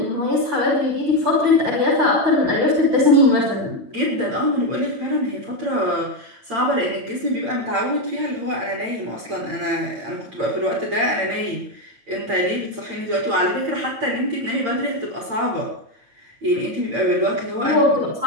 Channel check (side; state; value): left; late; 8.8 ms